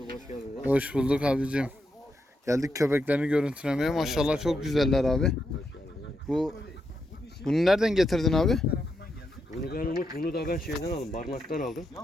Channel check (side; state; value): both; normal; correlation 0.83